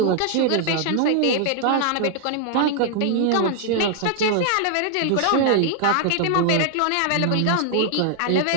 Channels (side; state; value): both; different; correlation 0.00